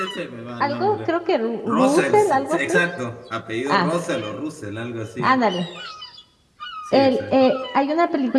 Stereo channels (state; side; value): identical; both; correlation 1.00